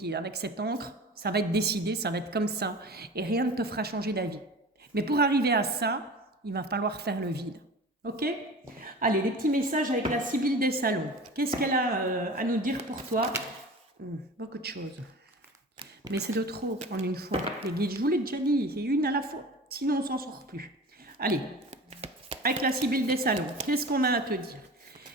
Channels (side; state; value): both; normal; correlation 0.37